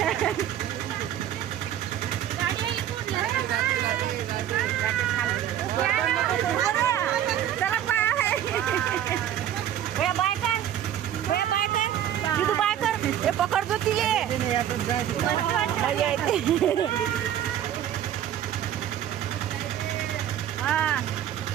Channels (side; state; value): left; quieter; 11.0 dB